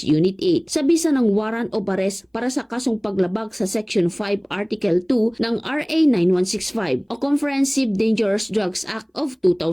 Unit 8 sa bisa ng warrant of arrest para sa kasong paglabag sa Section 5 Article 2 ng RA 9165 o Comprehensive Dangerous Drugs Act of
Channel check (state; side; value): identical; both; correlation 1.00